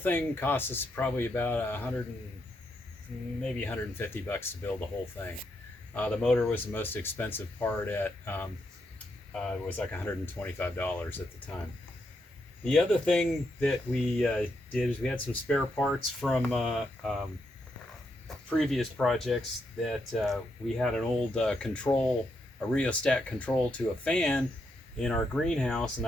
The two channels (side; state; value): both; normal; correlation 0.80